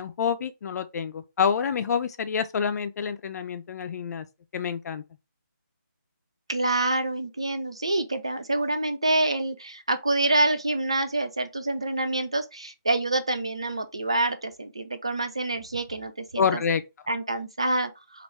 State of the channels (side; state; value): both; inverted; correlation -0.66